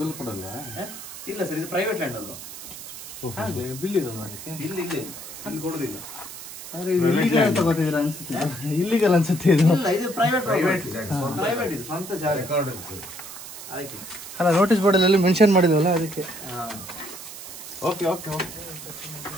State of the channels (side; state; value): right; noise; hiss, 12 dB below the sound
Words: ಬಿಲ್ ಕೊಡಲ್ಲ? ಇಲ್ಲ ಸರ್, ಇದು ಪ್ರೈವೇಟ್ ಲ್ಯಾಂಡ್ ಅಲ್ವಾ? ಬಿಲ್ ಇದೆ ಇಲ್ಲಿ ಕೊಡುದಿಲ್ಲ. ಇಲ್ಲಿಗಲ್ ಅನ್ಸುತ್ತೆ ಇದು. ಇಲ್ಲ, ಇದು ಪ್ರೈವೇಟ್. ಇದು ಸ್ವಂತ ಜಾಗ. ಅಲ್ಲ, ನೋಟಿಸ್ ಬೋರ್ಡ್ ಅಲ್ಲಿ ಮೆನ್ಷನ್ ಮಾಡಿದ್ವಲ್ಲ ಅದಕ್ಕೆ. ಓಕೆ.